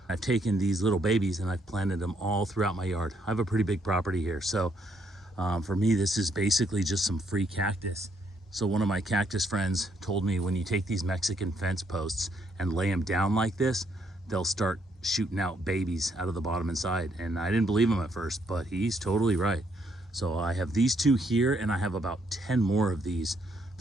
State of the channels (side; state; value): both; normal; correlation 0.73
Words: I've taken these little babies and I've planted them all throughout my yard. I have a pretty big property here. So for me, this is basically just some free cactus. So one of my cactus friends told me when you take these Mexican fence posts and lay them down like this, they'll start shooting out babies out of the bottom and side. And I didn't believe him at first, but he's totally right. So I have these 2 here and I have about 10 more of these